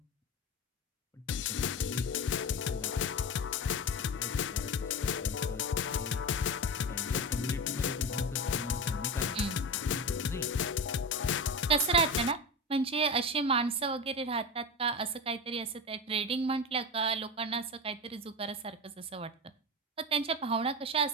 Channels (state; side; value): normal; both; correlation 0.23